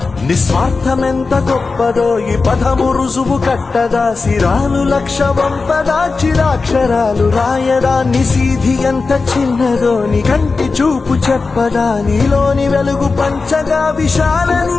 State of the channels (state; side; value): quieter; right; 4.2 dB